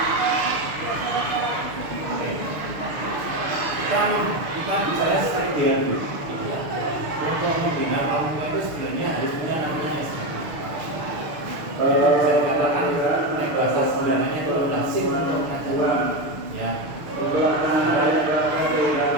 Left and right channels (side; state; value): left; late; 6.7 ms